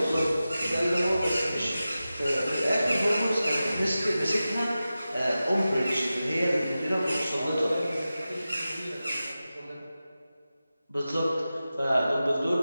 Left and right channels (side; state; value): both; inverted; correlation -0.94